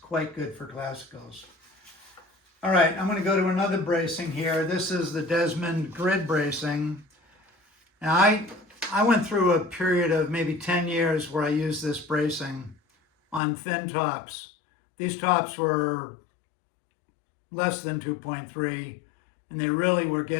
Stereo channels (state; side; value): drops out; right; at 13.4 s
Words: good for classicals. All right, I'm going to go to another bracing here. This is the Desmond grid bracing. Now, I went through a period of maybe 10 years where I used this bracing on thin tops. These tops were less than 2.3, and they really were